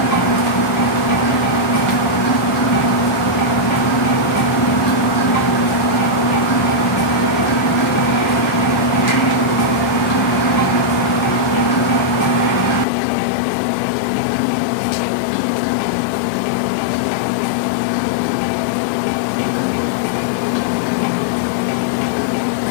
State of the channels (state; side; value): drops out; right; at 12.9 s